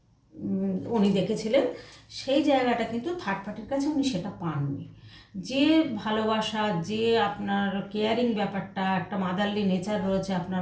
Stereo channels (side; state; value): both; identical; correlation 1.00